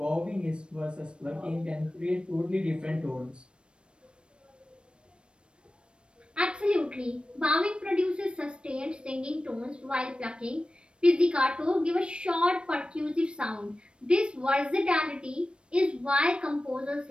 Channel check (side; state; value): left; late; 0.056 ms